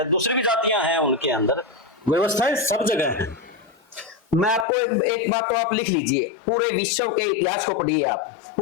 दूसरी भी जातियां हैं उनके अंदर, व्यवस्थाएं सब जगह हैं। मैं आपको एक बात तो आप लिख लीजिए, पूरे विश्व के इतिहास को पढ़िए आप,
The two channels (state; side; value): drops out; right; at 4.7 s